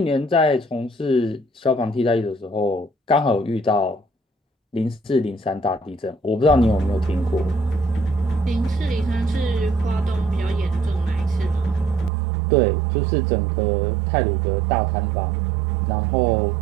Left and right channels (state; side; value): drops out; left; at 12.1 s